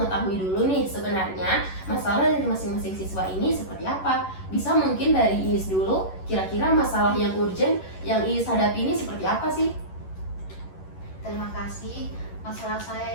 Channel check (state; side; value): late; right; 11 ms